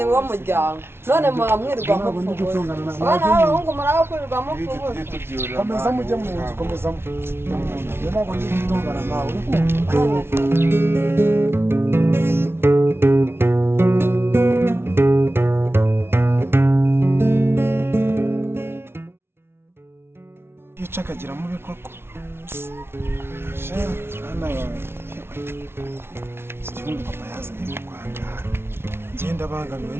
wo muryango none muba mwirirwa mupfubuza abana b'abahungu muraba kwirirwa mupfubuza komeza mujye mu nzu komeza mu nzu ntabwo ndi gutongana nawe yica akagira mubi koko hano iki gihugu papa yazanye mu Rwanda ngenda bangamiwe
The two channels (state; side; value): late; left; 0.12 ms